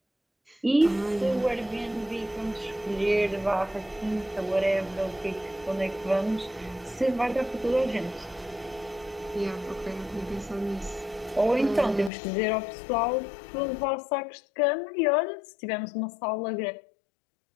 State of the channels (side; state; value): right; drops out; at 12.1 s